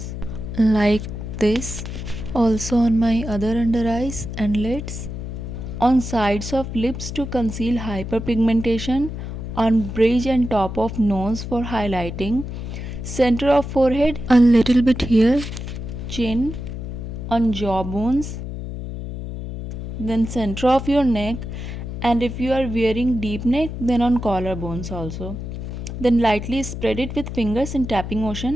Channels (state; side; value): noise; left; hum, 7 dB below the sound